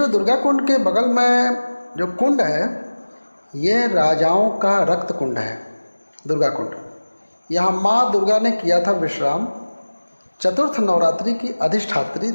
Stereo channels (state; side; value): inverted; both; correlation -1.00